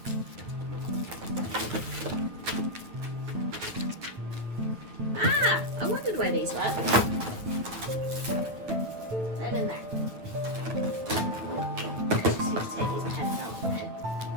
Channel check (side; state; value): left; late; 9.2 ms